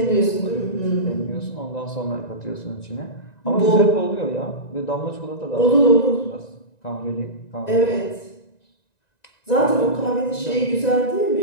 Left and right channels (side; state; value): right; late; 1.9 ms